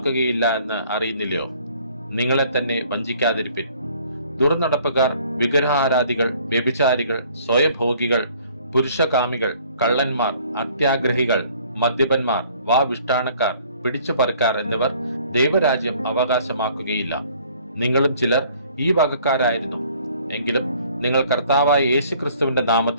എന്ന് അറിയുന്നില്ലയോ? നിങ്ങളെ തന്നെ വഞ്ചിക്കാതിരിപ്പിൻ. ദുർനടപ്പുകാർ, വിഗ്രഹാരാധികൾ, വ്യഭിചാരികൾ, സ്വയഭോഗികൾ, പുരുഷകാമികൾ, കള്ളന്മാർ, അത്യാഗ്രഹികൾ, മദ്യപന്മാർ, വാവിഷ്ടാണക്കാർ, പിടിച്ചുപറിക്കാർ എന്നിവർ ദൈവരാജ്യം അവകാശമാക്കുകയില്ല. നിങ്ങളും ചിലർ ഈ വകക്കാരായിരുന്നു. എങ്കിലും നിങ്ങൾ കർത്താവായ യേശുക്രിസ്തുവിന്റെ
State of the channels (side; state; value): both; inverted; correlation -0.58